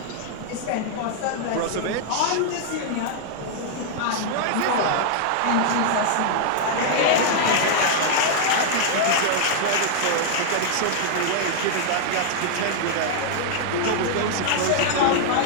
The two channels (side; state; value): both; different; correlation -0.01